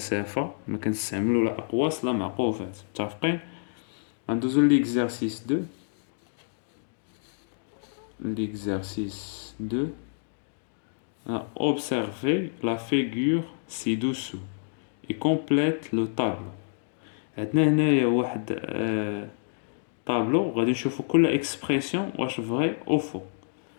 ما كنستعملو لا أقواس لا معقوفات. متفقين؟ غندوزو ليكزارسيس 2. L'exercice 2. Observez la figure ci-dessous et complète le tableau. عندنا هنايا واحد طابلو غادي نشوفو كل اكسبريسيون واش فري او فو.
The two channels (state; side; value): silent; right; digital silence